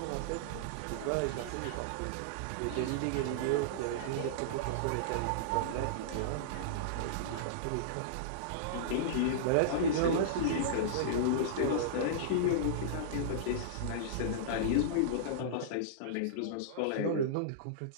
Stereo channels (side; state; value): both; different; correlation -0.03